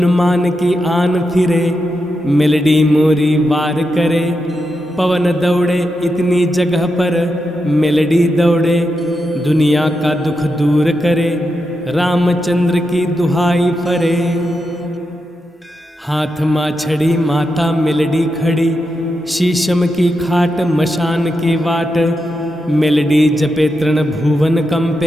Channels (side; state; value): both; normal; correlation 0.86